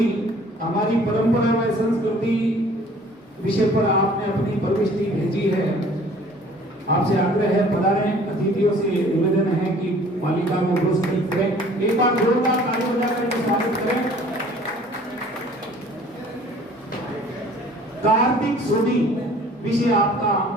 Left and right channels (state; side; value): normal; both; correlation 0.52